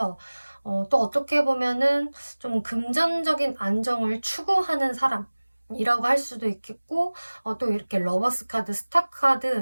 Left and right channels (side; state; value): both; inverted; correlation -1.00